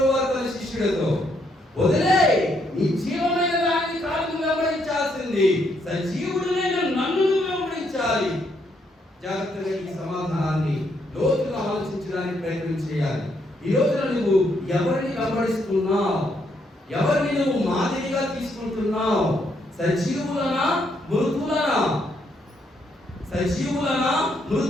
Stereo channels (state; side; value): normal; both; correlation 0.74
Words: తన శిష్యులతో. వదిలే, నీ జీవమైన దాన్ని కాదు వెంబడించాల్సింది, సజీవుడైన నన్ను వెంబడించాలి. జాగ్రత్తగా ఈ సమాధానాన్ని లోతుగా ఆలోచించడానికి ప్రయత్నం చేయాలి. ఈ రోజున నువ్వు ఎవరిని వెంబడిస్తున్నావు? ఎవరిని నువ్వు మాదిరిగా తీసుకుంటున్నావు? సజీవులనా మృతులనా? సజీవులనా